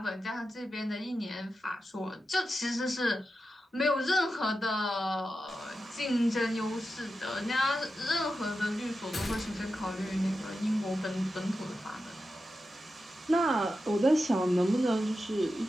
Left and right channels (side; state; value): both; normal; correlation 0.90